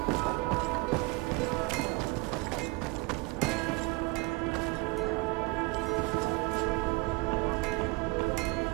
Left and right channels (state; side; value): quieter; left; 25.7 dB